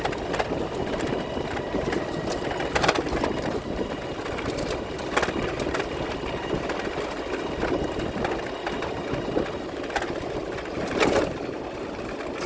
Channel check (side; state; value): both; identical; correlation 1.00